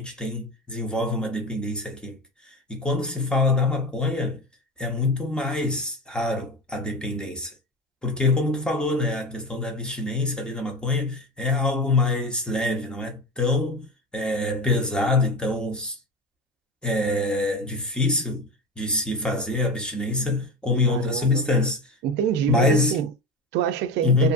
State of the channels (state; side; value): normal; both; correlation 0.24